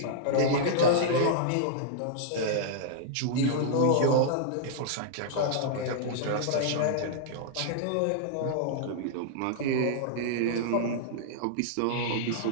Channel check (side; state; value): both; different; correlation -0.02